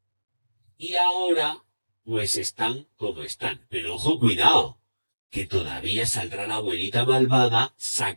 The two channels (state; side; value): inverted; both; correlation -1.00